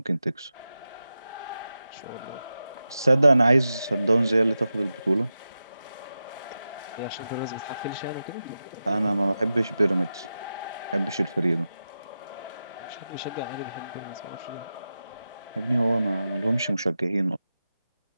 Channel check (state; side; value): inverted; both; correlation -0.92